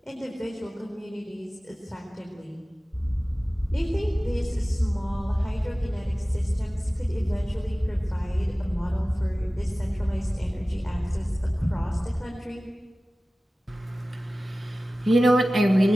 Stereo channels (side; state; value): both; normal; correlation 0.97